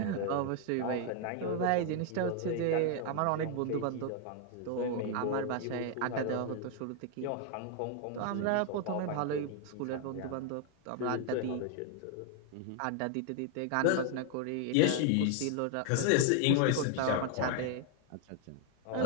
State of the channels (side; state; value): both; different; correlation 0.00